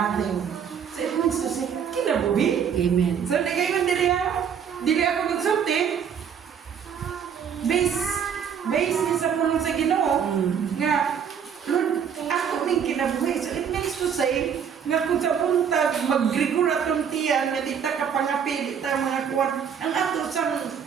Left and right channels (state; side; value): quieter; left; 7.6 dB